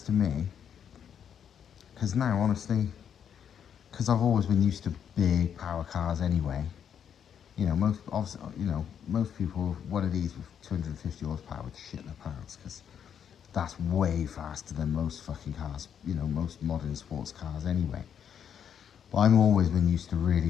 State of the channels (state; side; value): quieter; right; 8.4 dB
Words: to me, because now honestly, because I've always been used to big power cars anyway, you know, most people, one of these with 250 horsepower would shit their pants, because that's way faster than most fucking cars, you know, most modern sports cars anyway. But I've always been used to really